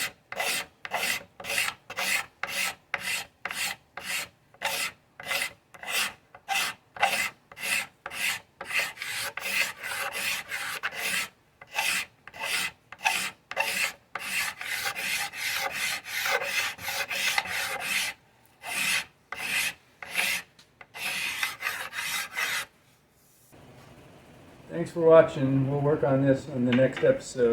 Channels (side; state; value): both; identical; correlation 1.00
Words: Thanks for watching. We'll work on this on the next